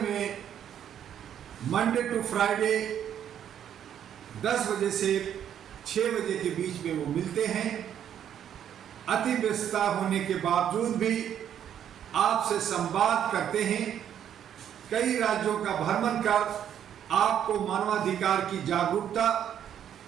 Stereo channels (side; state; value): left; quieter; 9.6 dB